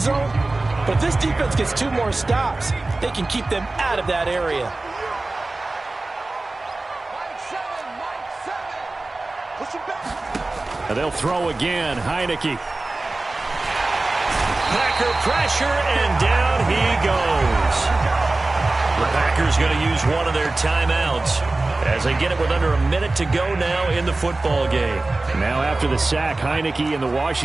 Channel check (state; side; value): quieter; left; 3.1 dB